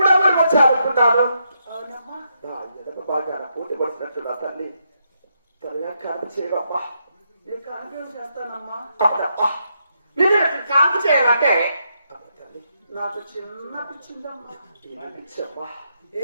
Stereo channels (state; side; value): inverted; both; correlation -0.80